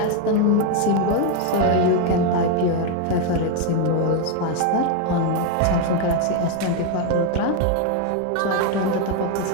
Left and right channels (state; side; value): different; both; correlation 0.01